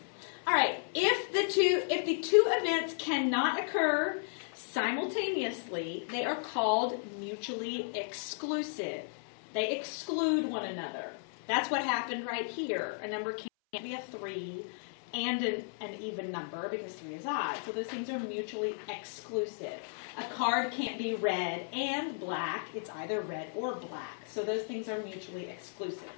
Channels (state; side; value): silent; right; 55 dB below the other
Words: All right, if the two events cannot occur simultaneously, they are called mutually exclusive. They exclude one another. That's what happened right here. A number can't be a 3 and an even number because 3 is odd. So those things are mutually exclusive. A card can't be red and black. It's either red or black. So those things are mutually exclusive.